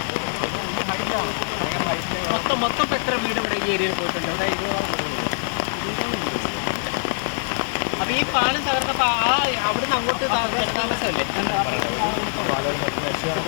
മൊത്തം എത്ര വീട് ഇവിടെ ഈ ഏരിയയിൽ പോയിട്ടുണ്ട്? അതായത് 20 അപ്പൊ ഈ പാലം തകർന്നപ്പോ അവിടുന്ന് അങ്ങോട്ട് താമസമല്ലേ?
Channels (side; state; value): right; silent; digital silence